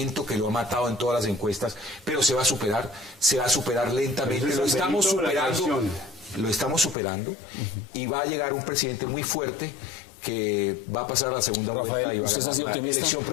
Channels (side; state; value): right; drops out; at 7.0 s